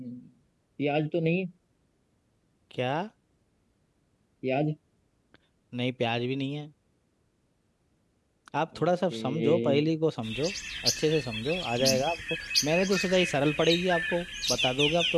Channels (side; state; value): both; identical; correlation 1.00